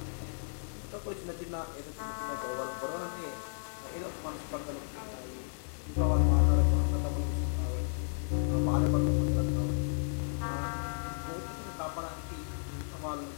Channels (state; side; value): silent; right; digital silence